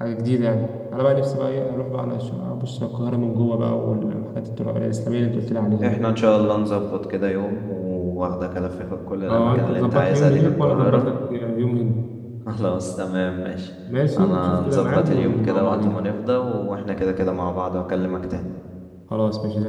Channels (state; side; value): identical; both; correlation 1.00